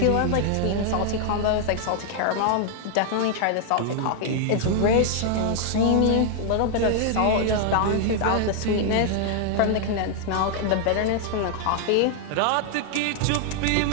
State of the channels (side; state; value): both; different; correlation 0.00